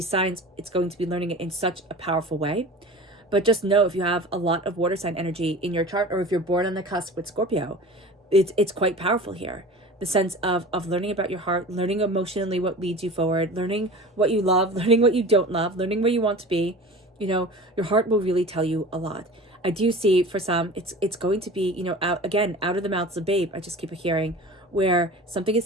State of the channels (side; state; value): both; normal; correlation 0.37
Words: signs, it's going to be learning it in such a powerful way. But just know, if you have a lot of water sign energy in your chart, or if you're born on the cusp with Scorpio, it's quite powerful here. The sense of learning about your heart, learning emotionally what leads you forward, learning what you love, learning what you don't love, learning where you want to be. Your heart will really tell you a lot. I do see for some, it's going to be, out of the mouths of babe. I just keep hearing where something